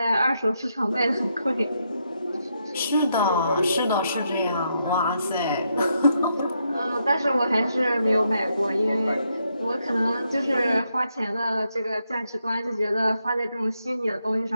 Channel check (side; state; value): both; inverted; correlation -0.79